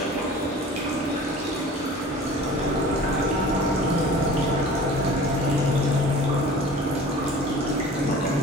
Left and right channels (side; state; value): both; normal; correlation 0.42